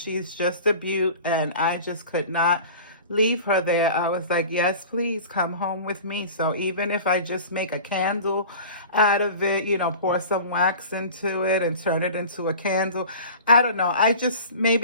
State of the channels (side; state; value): both; inverted; correlation -0.39